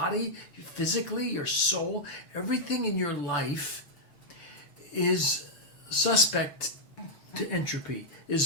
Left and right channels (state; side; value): late; right; 6.9 ms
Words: physically, your soul, everything in your life is suspect to entropy,